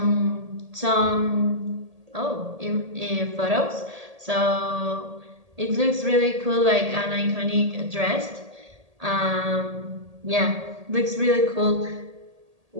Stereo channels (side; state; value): left; late; 1.8 ms